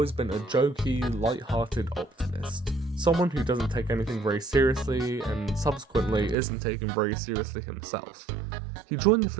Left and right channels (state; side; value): drops out; left; at 6.4 s